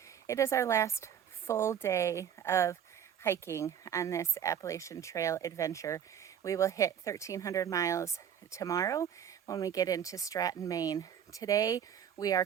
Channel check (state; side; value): quieter; left; 8.9 dB